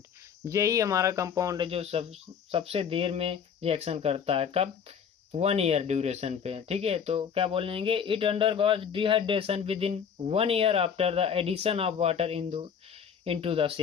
यही हमारा कंपाउंड है जो सबसे देर में रिएक्शन करता है, कब, 1 ईयर ड्यूरेशन पे, ठीक है। तो क्या बोलेंगे, it undergoes dehydration within 1 year after the addition of water into the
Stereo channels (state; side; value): quieter; right; 7.3 dB